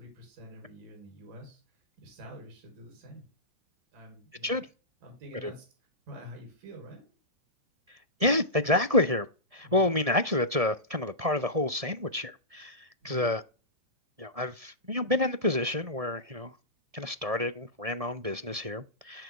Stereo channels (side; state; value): left; late; 1.7 ms